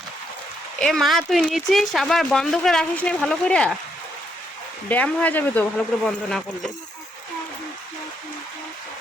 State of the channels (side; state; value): both; normal; correlation 0.76